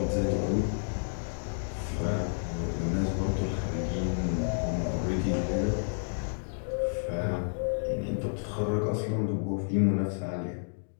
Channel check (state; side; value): silent; right; digital silence